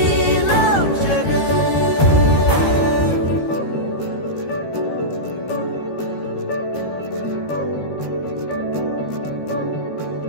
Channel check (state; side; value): late; right; 13 ms